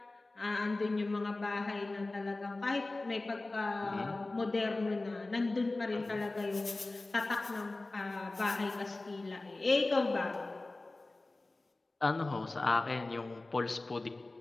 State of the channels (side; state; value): right; quieter; 3.1 dB